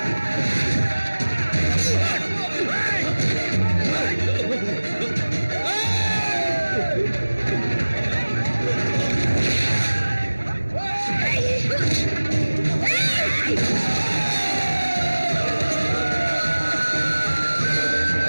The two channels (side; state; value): both; inverted; correlation -1.00